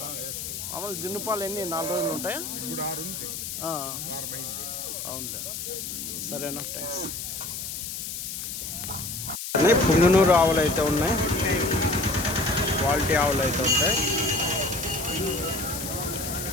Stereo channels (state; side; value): noise; left; hiss, 6 dB below the sound